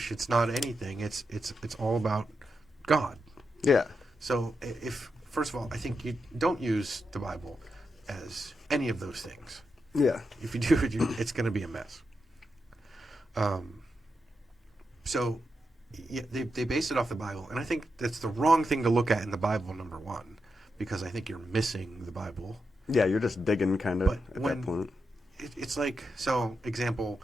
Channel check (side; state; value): both; normal; correlation 0.86